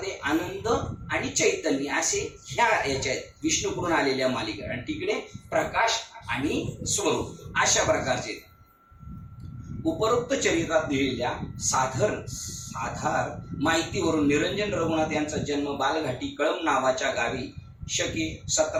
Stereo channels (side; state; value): both; identical; correlation 1.00